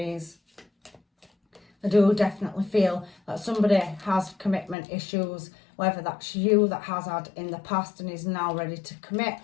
I do definitely feel that somebody has commitment issues, whether that's you that has had in the past and is now ready to commit,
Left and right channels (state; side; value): drops out; right; at 4.8 s